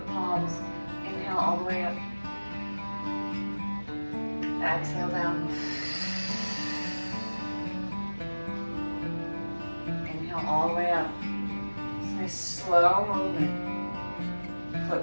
palms. Inhale all the way up. Exhale down. Inhale all the way up. Nice slow movement. Foot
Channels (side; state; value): both; inverted; correlation -1.00